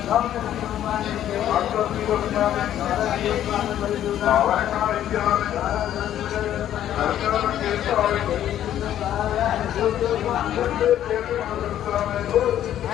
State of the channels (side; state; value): right; quieter; 11.4 dB